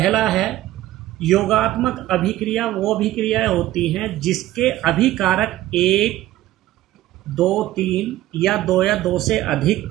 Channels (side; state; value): left; quieter; 15.1 dB